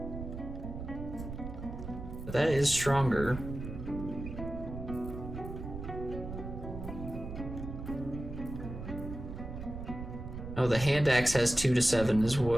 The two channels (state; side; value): noise; right; rumble, 8 dB below the sound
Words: But that is stronger. Oh, the hand axe has 2 to 7